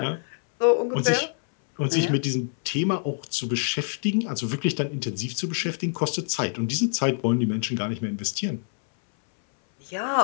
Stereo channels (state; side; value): silent; right; 61 dB below the other